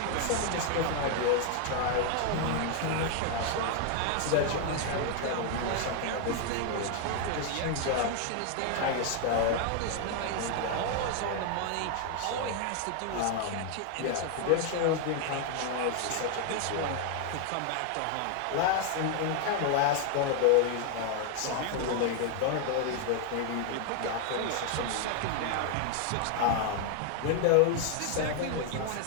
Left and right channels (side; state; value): both; different; correlation 0.00